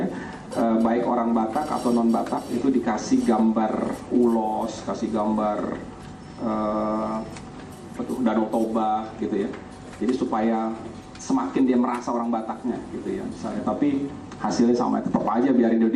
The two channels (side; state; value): both; identical; correlation 1.00